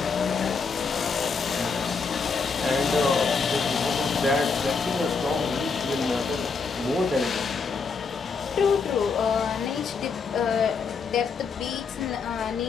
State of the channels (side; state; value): right; quieter; 5.0 dB